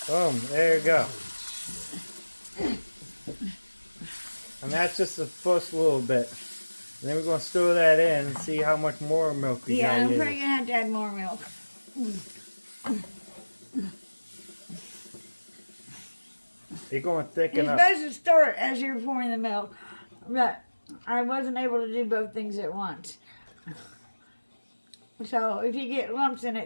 Boom, there you go. And that's just the first little bit. And then we're going to stir that in and see how much more milk we got. Yeah, I'm probably going to have to add more milk. You're going to thicken You're up. supposed to stir it as you're pouring the milk, but I wasn't able to do both things at once. So if you get lumps in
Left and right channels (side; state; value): both; inverted; correlation -1.00